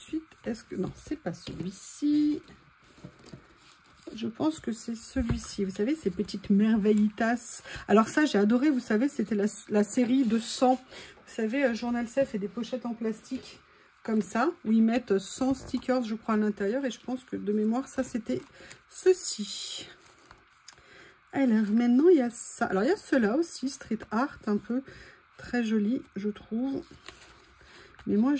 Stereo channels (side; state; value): both; identical; correlation 1.00